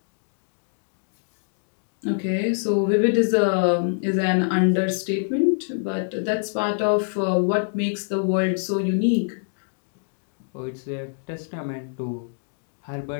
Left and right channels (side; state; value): right; silent; digital silence